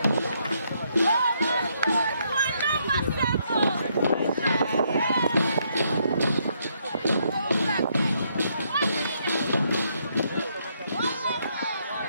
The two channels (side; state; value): both; inverted; correlation -0.74